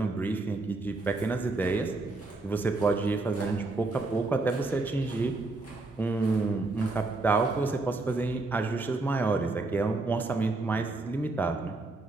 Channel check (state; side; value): quieter; left; 3.3 dB